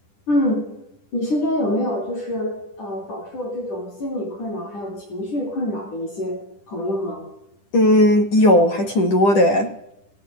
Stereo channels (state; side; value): late; right; 10 ms